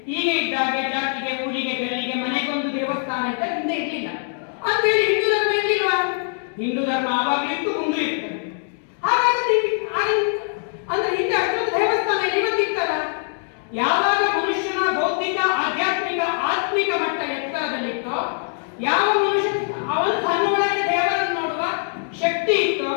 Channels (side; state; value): right; silent; 58 dB below the other